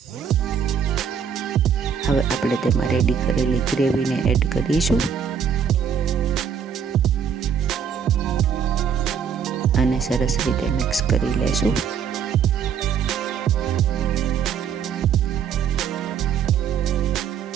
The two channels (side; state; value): left; quieter; 7.3 dB